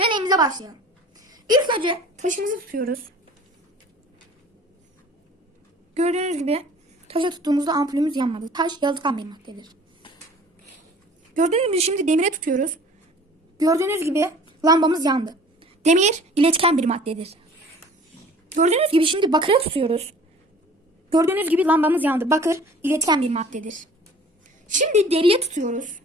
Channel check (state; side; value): normal; both; correlation 0.48